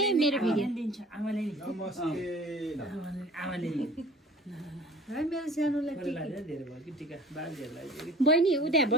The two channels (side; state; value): both; normal; correlation 0.46